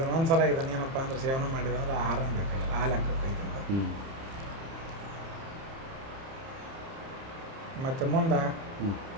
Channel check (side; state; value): left; late; 30 ms